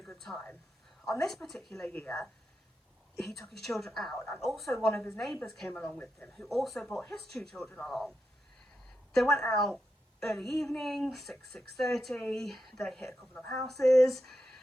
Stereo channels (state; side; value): normal; both; correlation 0.87